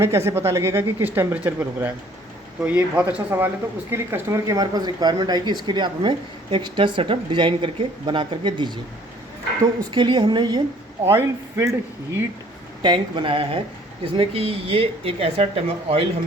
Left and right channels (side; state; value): both; normal; correlation 0.57